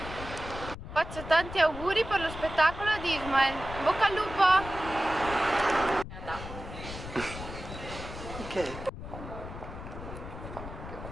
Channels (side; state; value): left; noise; rumble, 10 dB below the sound